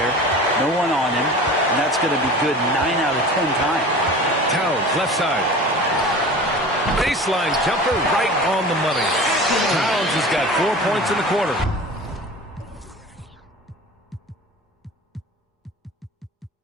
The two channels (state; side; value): normal; both; correlation 0.38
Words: No one on him, and that's going to be good 9 out of 10 times. Towns, left side. Baseline jumper right on the money. Towns has got 4 points in the quarter.